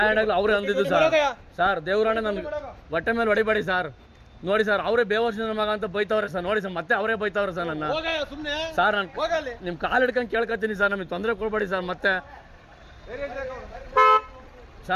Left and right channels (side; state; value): both; identical; correlation 1.00